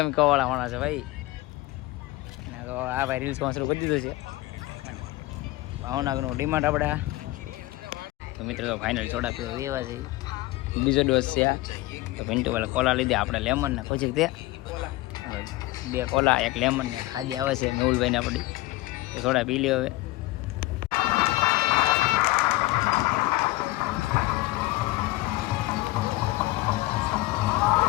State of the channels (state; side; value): quieter; right; 19.6 dB